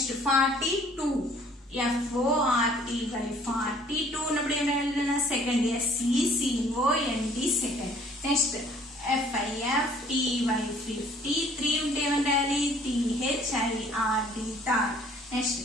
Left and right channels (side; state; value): both; normal; correlation 0.57